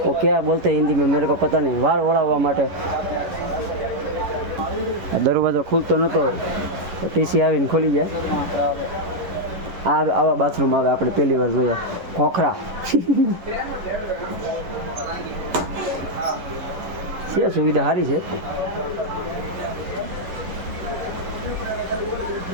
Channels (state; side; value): late; left; 11 ms